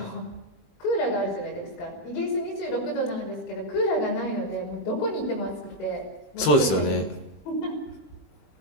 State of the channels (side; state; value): right; late; 20 ms